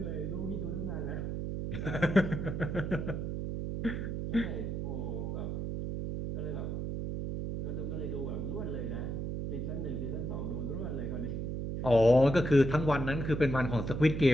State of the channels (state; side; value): noise; right; hum, 3 dB below the sound